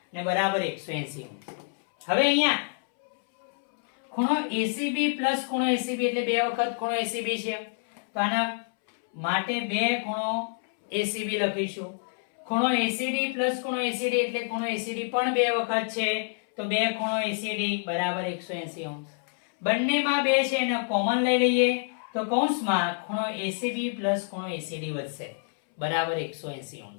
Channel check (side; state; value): right; silent; 60 dB below the other